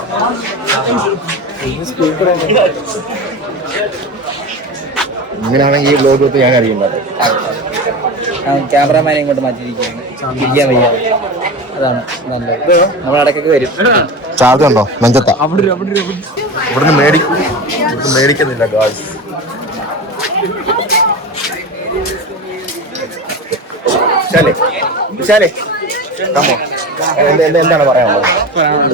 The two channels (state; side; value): normal; both; correlation 0.27